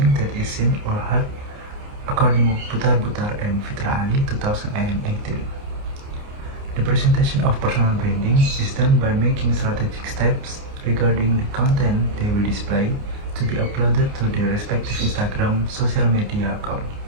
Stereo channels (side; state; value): left; late; 29 ms